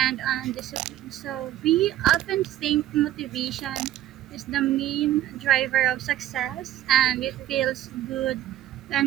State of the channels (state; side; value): quieter; left; 13.4 dB